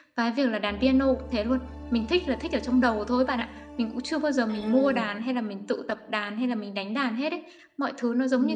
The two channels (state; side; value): identical; both; correlation 1.00